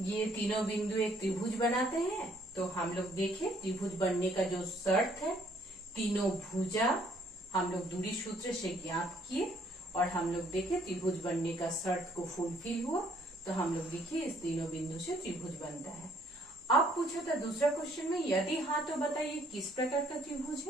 तीनों बिंदु एक त्रिभुज बनाते हैं। तो हम लोग देखें त्रिभुज बनने का जो शर्त है, तीनों भुजा हम लोग दूरी सूत्र से ज्ञात किए और हम लोग देखे त्रिभुज बनने का शर्त को फुलफिल हुआ तो हम लोग देखिए इस तीनों बिंदु से त्रिभुज बनता है। अब पूछा था दूसरा क्वेश्चन में, यदि हाँ तो बताइए किस प्रकार का त्रिभुज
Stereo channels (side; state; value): both; normal; correlation 0.64